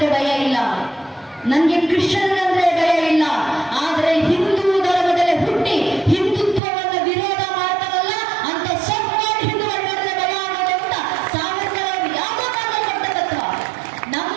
ಭಯ ಇಲ್ಲ, ನನಗೆ ಕ್ರಿಶ್ಚಿಯನ್ರಂದ್ರೆ ಭಯ ಇಲ್ಲ, ಆದರೆ ಹಿಂದೂ ಧರ್ಮದಲ್ಲಿ ಹುಟ್ಟಿ ಹಿಂದುತ್ವವನ್ನು ವಿರೋಧ ಮಾಡ್ತಾರಲ್ಲ ಅಂತ ಸೊಕ್ಕಾಗಿ ಹಿಂದೂಗಳನ್ನ ಭಯ ಆಗೋದು ಅಂತ ಸಾವರ್ಕರ್ ಅವರು ಯಾವುದೋ ಕಾರಣದಲ್ಲಿ ತತ್ವ.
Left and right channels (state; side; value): drops out; left; at 6.6 s